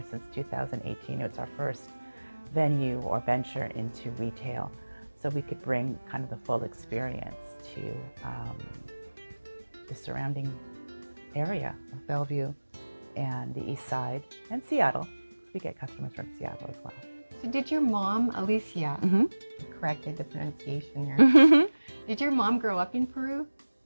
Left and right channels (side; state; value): both; inverted; correlation -1.00